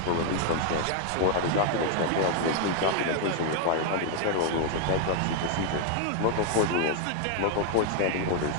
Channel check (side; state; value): both; different; correlation 0.00